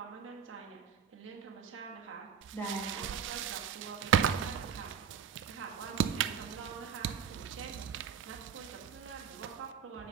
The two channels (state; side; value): quieter; left; 7.9 dB